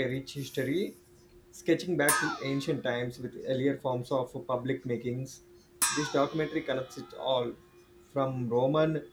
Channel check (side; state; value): both; identical; correlation 1.00